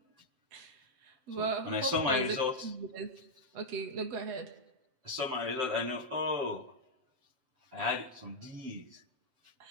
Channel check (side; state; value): left; late; 7.8 ms